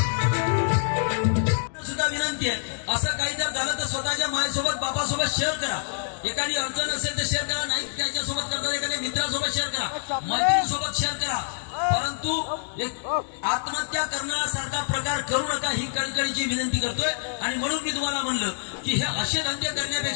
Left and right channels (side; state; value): right; silent; digital silence